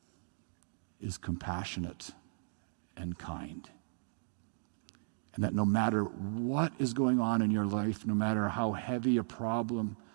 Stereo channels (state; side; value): silent; left; digital silence